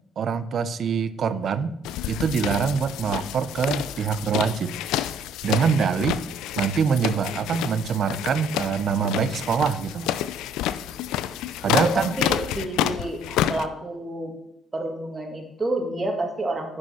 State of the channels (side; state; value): both; normal; correlation 0.60